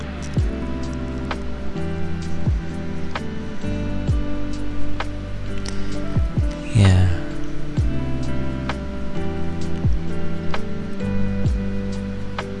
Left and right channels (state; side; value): identical; both; correlation 1.00